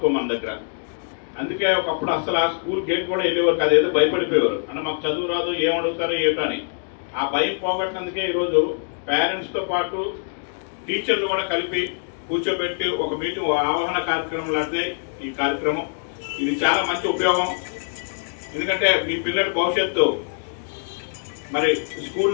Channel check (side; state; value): right; silent; 63 dB below the other